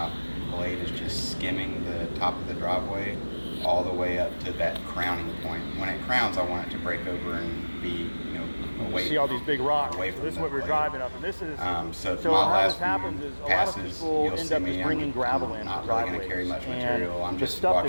blade is just skimming the top of the driveway all the way up to that crowning point. When it crowns, I want it to break over and be, you know, away. See all these big rocks. away So from this is that what we're blade. driving up, and this is So, so my how last this happens few is a lot of passes, people you'll end see up me, just bringing gravel in not for really going to driveways, carry much and material. I'm the just stuff that's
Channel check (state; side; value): inverted; both; correlation -1.00